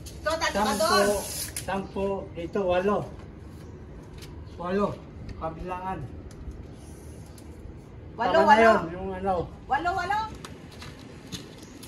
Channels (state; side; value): identical; both; correlation 1.00